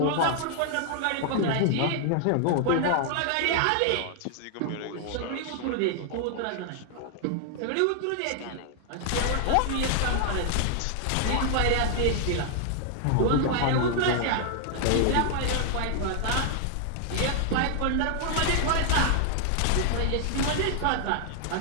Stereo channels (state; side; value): different; both; correlation 0.00